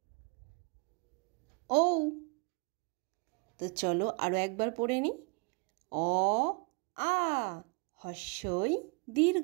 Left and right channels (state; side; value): quieter; left; 31.2 dB